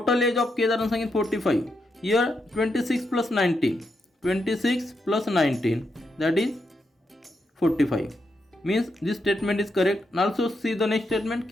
age of Kedar and Sanket 45. Here 26 plus 19. 26 plus 19, that is 45. Means this statement is correct. And also see the next statement,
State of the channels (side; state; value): both; normal; correlation 0.82